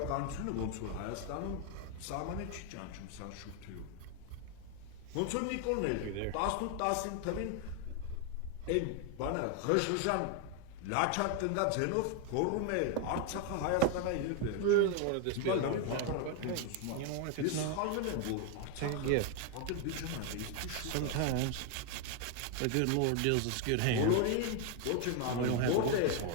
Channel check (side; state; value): both; different; correlation 0.01